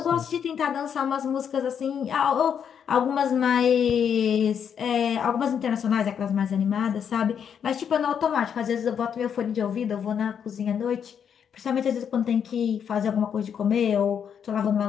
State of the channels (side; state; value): right; quieter; 7.9 dB